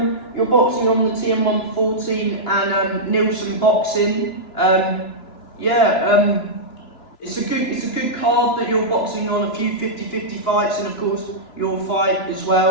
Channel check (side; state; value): right; late; 2.9 ms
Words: you're boxing on the TM114 and Nielsen Boxing. It's a good card that you're boxing on, a few 50-50 fights, and of course your fight as